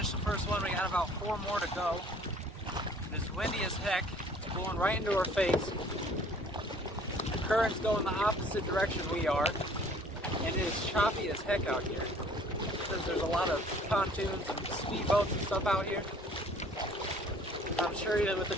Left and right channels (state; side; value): normal; both; correlation 0.54